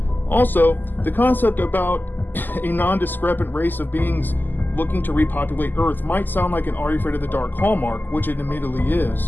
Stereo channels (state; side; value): late; right; 0.089 ms